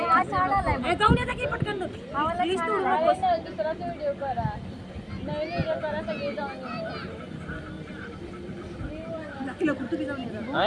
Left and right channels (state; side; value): identical; both; correlation 1.00